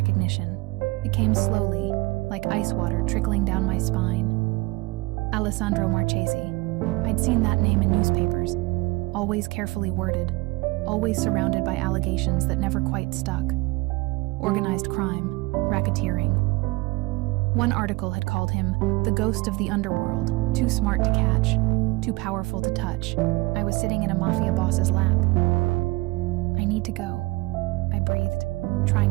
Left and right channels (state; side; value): quieter; left; 22.9 dB